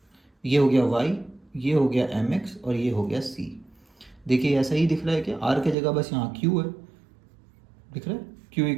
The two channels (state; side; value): drops out; left; at 5.8 s